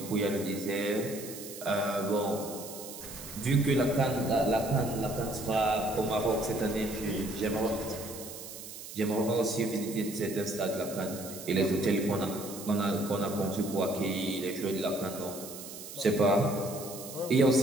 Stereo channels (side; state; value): right; noise; hiss, 12 dB below the sound